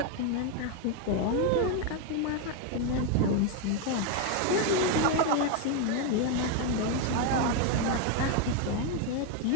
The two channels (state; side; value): different; both; correlation 0.02